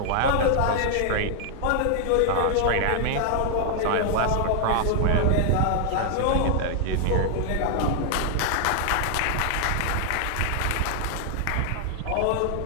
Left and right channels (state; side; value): different; both; correlation 0.00